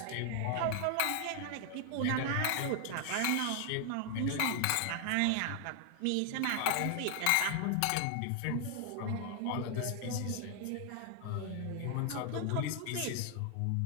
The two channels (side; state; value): both; different; correlation 0.00